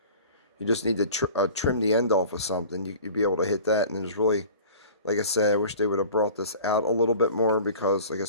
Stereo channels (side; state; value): both; inverted; correlation -0.43